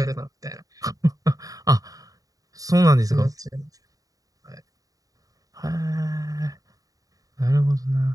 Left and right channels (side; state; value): left; late; 0.17 ms